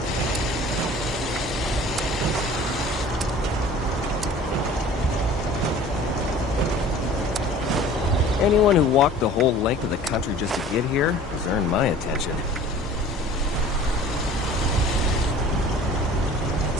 Anyone who walked the whole length of the country just to get here has earned my attention.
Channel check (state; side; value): normal; both; correlation 0.46